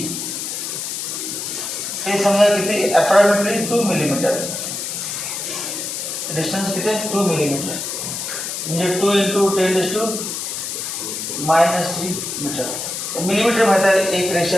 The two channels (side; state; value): left; noise; hiss, 5 dB below the sound